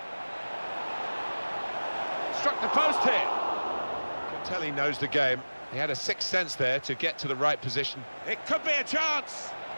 Struck the post here. Tell he knows the game. He had a sixth sense there to get to the right position. It could be a chance.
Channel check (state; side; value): inverted; both; correlation -1.00